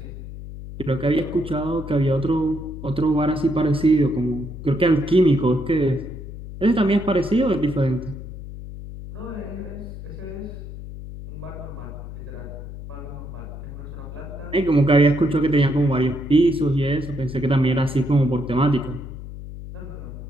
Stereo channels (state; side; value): noise; left; hum, 11 dB below the sound